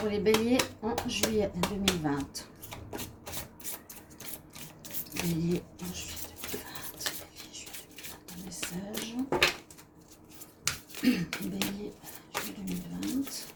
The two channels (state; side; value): identical; both; correlation 1.00